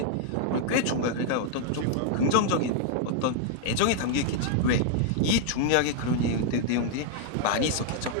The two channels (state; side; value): different; both; correlation 0.00